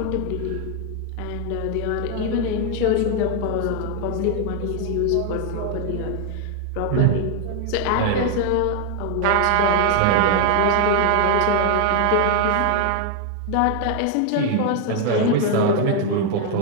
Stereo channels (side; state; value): both; different; correlation 0.01